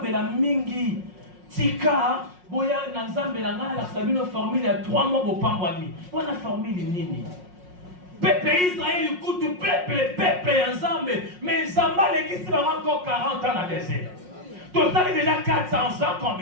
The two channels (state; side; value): late; left; 5.5 ms